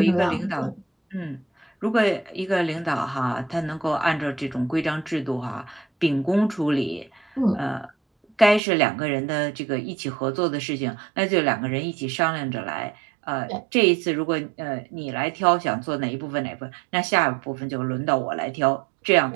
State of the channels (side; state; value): left; drops out; at 8.6 s